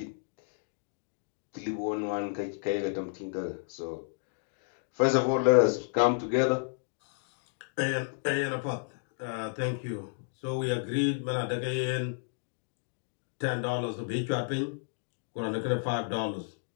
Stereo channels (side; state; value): right; silent; digital silence